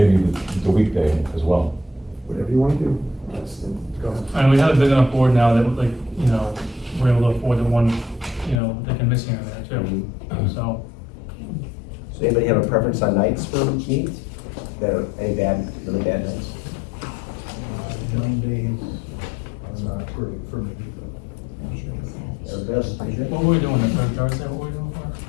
the weekday as well. whatever you wanna do. Go ahead. And we have a big enough board now that, like, we're able to afford the one, they can miss here and there too, so. Does anybody have a preference on nights for meetings? Any really bad nights? Mondays are not great for me. Everybody else is pretty good? What were we doing, the third Thursday, what were we doing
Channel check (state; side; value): drops out; right; at 8.6 s